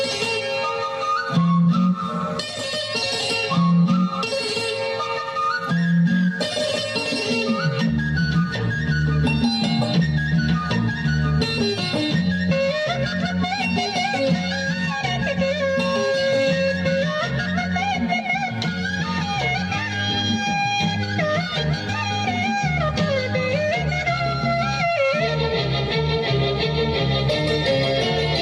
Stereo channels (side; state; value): both; identical; correlation 1.00